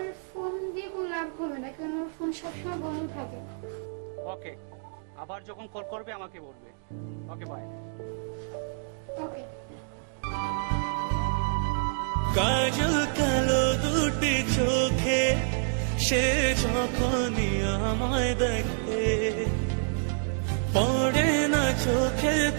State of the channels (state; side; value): silent; left; 59 dB below the other